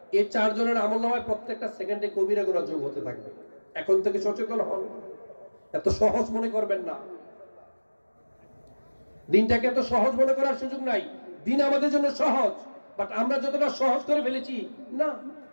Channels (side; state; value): both; inverted; correlation -1.00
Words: এই 4 জনের আমলনামায় প্রত্যেকটা সেকেন্ডে কবিরা গুনাহ যোগ হতে থাকবে। এখন থেকে সচেতন হন, এত সহজ মনে করবেন না। দিনটাকে এত সহজ মনে করার সুযোগ নাই। দিন আমাদের জন্য সহজ, বাট আমরা যতটা সহজ করে ফেলেছি না।